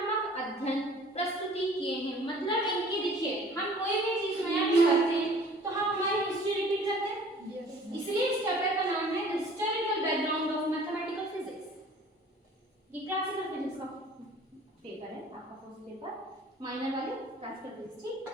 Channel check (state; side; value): normal; both; correlation 0.50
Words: अध्ययन प्रस्तुति किए हैं। मतलब इनकी देखिए, हम कोई भी चीज नया भी करते हैं तो हम हमारी हिस्ट्री रिपीट करते हैं, इसलिए इस चैप्टर का नाम है historical background of mathematical physics. ये क्लासिकल फिजिक्स का पेपर है आपका, फर्स्ट पेपर माइनर वाले क्लासिकल फिजिक्स, ठीक?